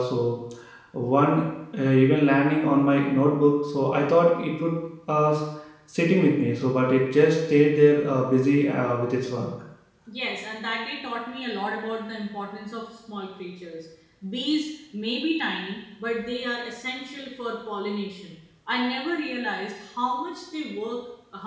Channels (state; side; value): identical; both; correlation 1.00